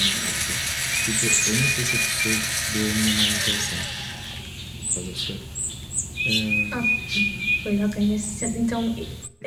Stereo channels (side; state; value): both; identical; correlation 1.00